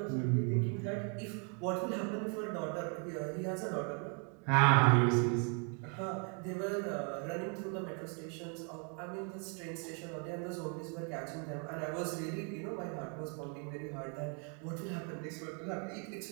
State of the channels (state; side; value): quieter; left; 38.4 dB